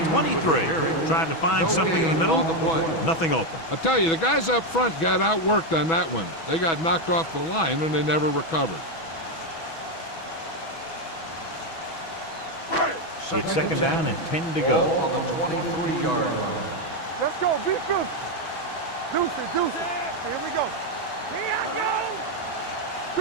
23. Trying to find something in the middle. Nothing open. I'll tell you, the guys up front got outworked on that one. They got knocked off the line and they never recovered. It's 2nd down and 10 to Ball go. on the 23-yard line. Let's go. Be fierce. Deuce it. Deuce it. Here we go. Here I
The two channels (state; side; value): late; right; 6.1 ms